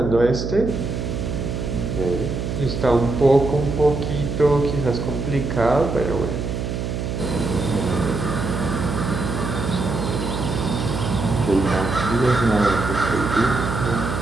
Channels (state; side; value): noise; right; hum, 3 dB below the sound